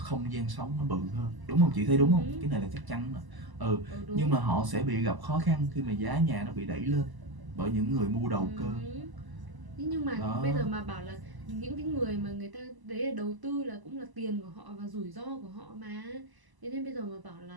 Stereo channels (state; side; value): late; left; 1.0 ms